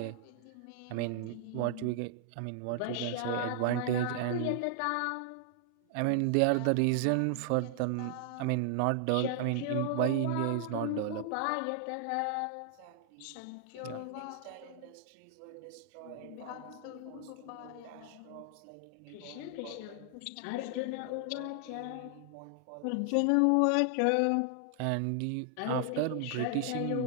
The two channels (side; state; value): both; different; correlation 0.00